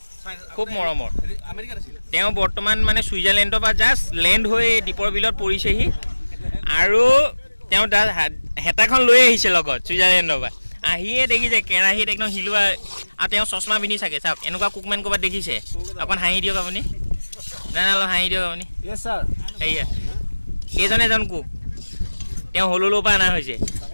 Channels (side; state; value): both; inverted; correlation -1.00